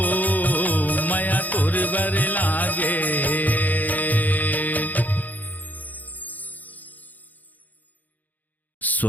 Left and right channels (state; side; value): late; right; 0.081 ms